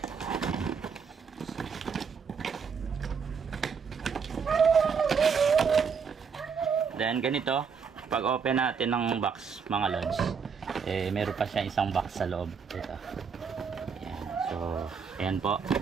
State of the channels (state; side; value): quieter; left; 6.1 dB